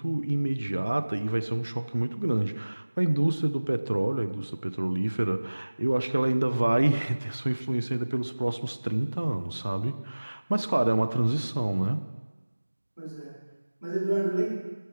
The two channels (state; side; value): inverted; both; correlation -1.00